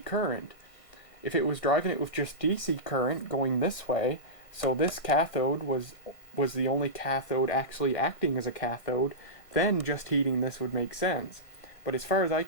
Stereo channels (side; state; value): right; late; 1.5 ms